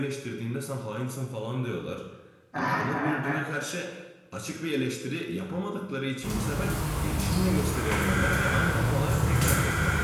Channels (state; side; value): identical; both; correlation 1.00